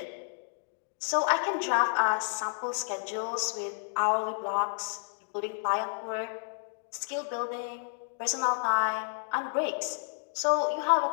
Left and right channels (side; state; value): right; silent; digital silence